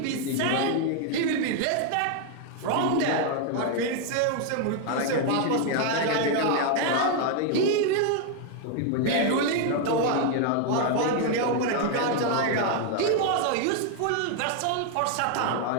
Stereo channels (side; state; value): both; different; correlation 0.00